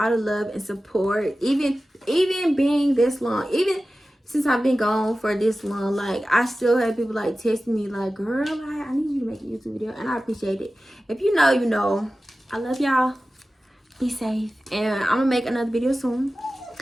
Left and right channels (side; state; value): both; normal; correlation 0.95